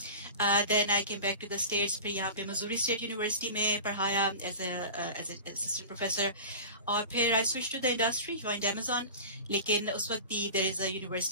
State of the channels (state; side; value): inverted; both; correlation -0.33